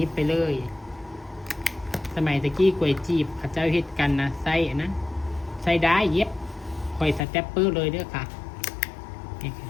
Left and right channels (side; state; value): right; drops out; at 7.2 s